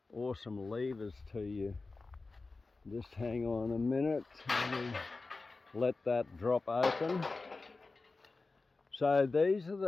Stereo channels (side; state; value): right; quieter; 3.7 dB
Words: awesome levers to you. Just hang on a minute and let that drop open. So these are